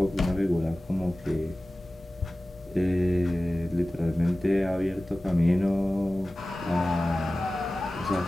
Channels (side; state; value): both; normal; correlation 0.96